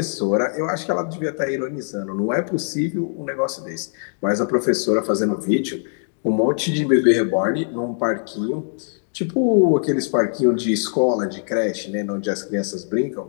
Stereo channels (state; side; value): silent; right; digital silence